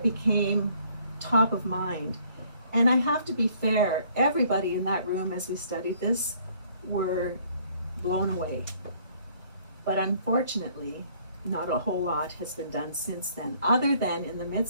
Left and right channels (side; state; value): both; inverted; correlation -0.62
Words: became top of mind. And I have to be fair, everybody in that room as we studied this were blown away. But unfortunately, not a whole lot has been done since then, other than in the